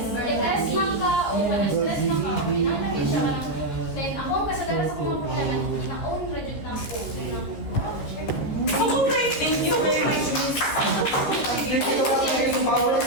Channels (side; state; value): right; late; 14 ms